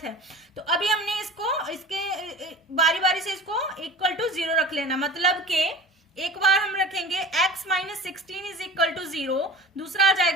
है, तो अभी हमने इसके बारी बारी से इसको इक्वल टू 0 रख लेना। मतलब कि एक बार हम रखेंगे x minus 16 is equal to 0, दूसरा आ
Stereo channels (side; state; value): both; normal; correlation 0.38